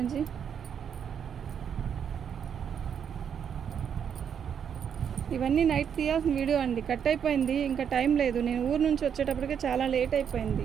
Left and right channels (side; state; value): left; quieter; 7.9 dB